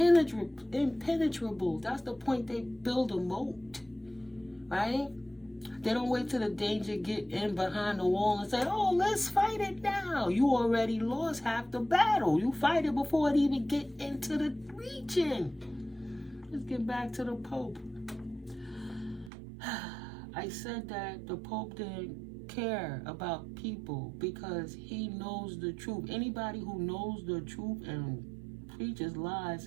That's the point they build a moat, right? They don't wait till the danger get in behind the wall and say, oh, let's fight it now. You already lost half the battle. You fight it before it even get into the region. Let's get back to the Pope. I said that the Pope didn't care about people because he knows the truth. Anybody who knows the truth and preaches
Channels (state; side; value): drops out; left; at 19.3 s